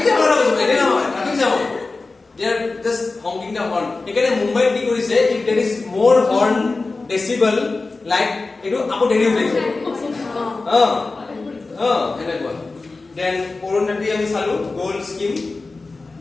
জাম বুঝিব এনে নহয় traffic jam they are just honking the horn এখানে মুম্বাই কি কৰিছে if there is more horn decibel like এটো আপো দেৰি হৈ যায় এনেকুৱা then অৰুণাটি আমি চালু গোল্ড স্কিম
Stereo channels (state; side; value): quieter; right; 3.6 dB